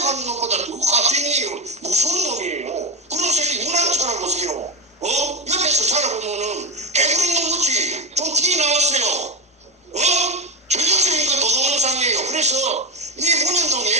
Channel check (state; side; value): normal; both; correlation 0.15